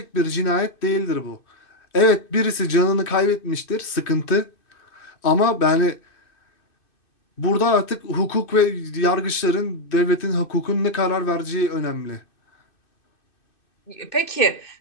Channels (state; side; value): late; right; 2.6 ms